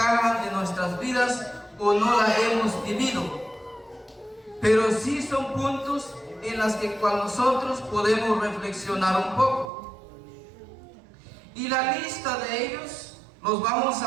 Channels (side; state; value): left; drops out; at 9.7 s